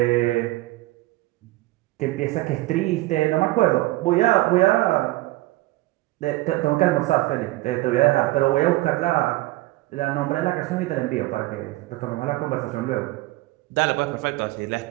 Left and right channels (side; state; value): left; quieter; 18.9 dB